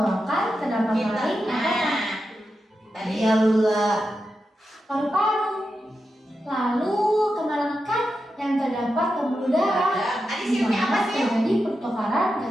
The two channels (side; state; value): both; normal; correlation 0.89